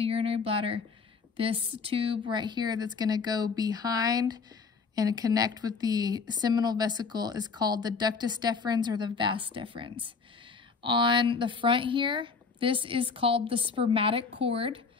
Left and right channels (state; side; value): quieter; right; 5.0 dB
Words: urinary bladder. This tube right here that's going to go behind and connect with the seminal vesicle is called the ductus deferens or the vas deferens. On the front here, this is called the spermatic cord,